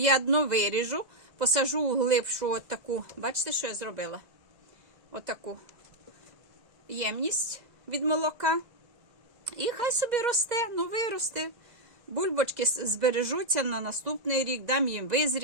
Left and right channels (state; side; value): late; left; 2.0 ms